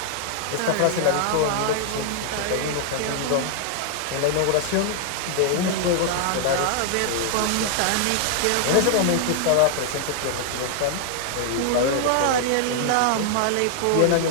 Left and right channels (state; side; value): different; both; correlation 0.00